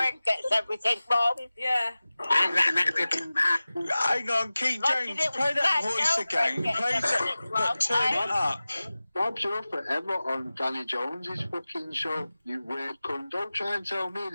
gets everything wrong. Yeah. Hang on, King James, play that voice again. Play that, but turn it up. Bob's you're forever on Danny Jones's fucking show, you weird cunt. Don't try and tell me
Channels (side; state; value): both; inverted; correlation -0.97